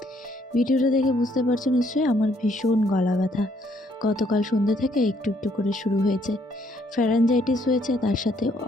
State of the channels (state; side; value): normal; both; correlation 0.68